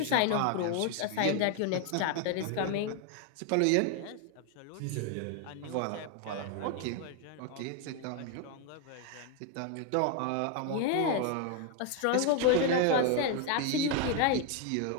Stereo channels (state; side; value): different; both; correlation 0.01